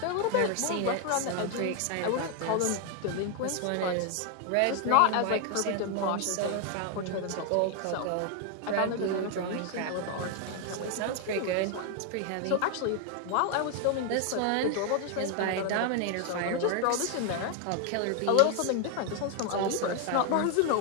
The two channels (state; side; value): different; both; correlation 0.01